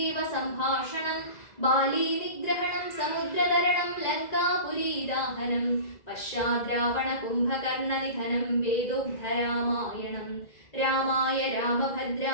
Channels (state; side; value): late; right; 2.0 ms